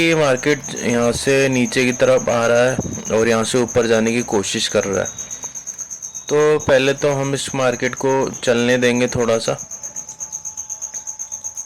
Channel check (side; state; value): both; identical; correlation 1.00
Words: मार्केट यहाँ से नीचे की तरफ आ रहा है और यहाँ से ऊपर जाने की कोशिश कर रहा है। तो पहले तो हम इस मार्केट को चलने देंगे थोड़ा सा।